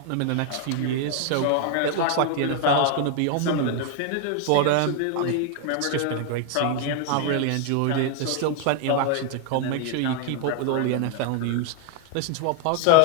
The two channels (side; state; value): both; different; correlation 0.00